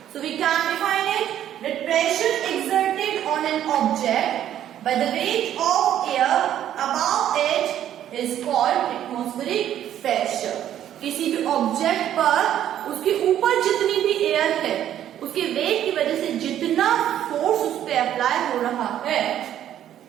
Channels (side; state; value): left; quieter; 11.1 dB